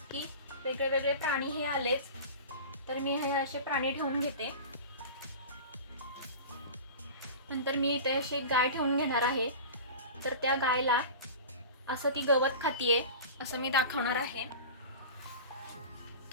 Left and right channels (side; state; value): both; inverted; correlation -0.34